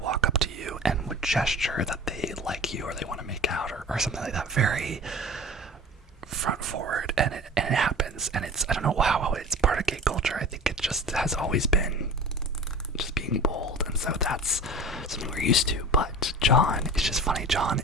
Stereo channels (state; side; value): normal; both; correlation 0.37